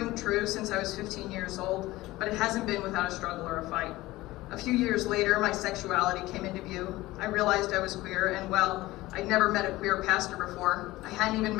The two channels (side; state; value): right; quieter; 18.2 dB